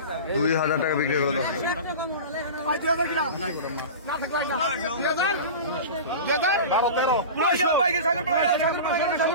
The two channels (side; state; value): both; inverted; correlation -0.31